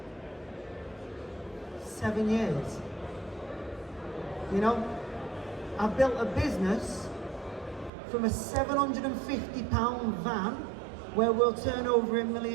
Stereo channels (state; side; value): drops out; left; at 7.9 s